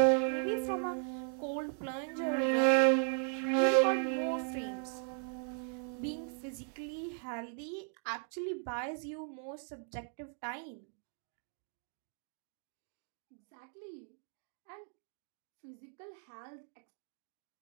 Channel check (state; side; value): silent; left; 53 dB below the other